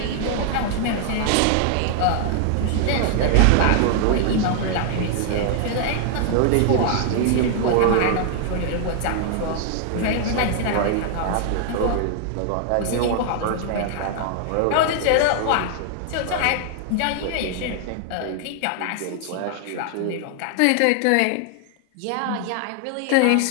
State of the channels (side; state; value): both; different; correlation 0.00